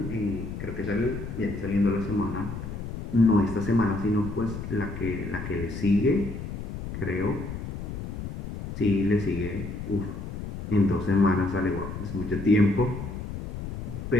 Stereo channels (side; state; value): left; noise; rumble, 7 dB below the sound